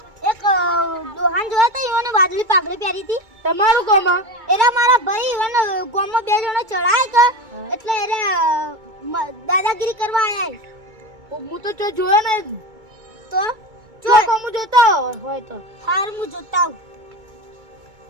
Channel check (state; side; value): late; left; 2.3 ms